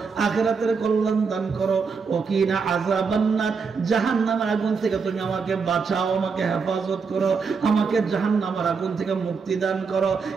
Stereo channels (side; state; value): left; quieter; 5.3 dB